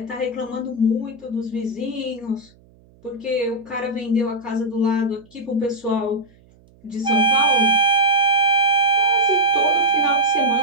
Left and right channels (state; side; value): noise; right; hum, 29 dB below the sound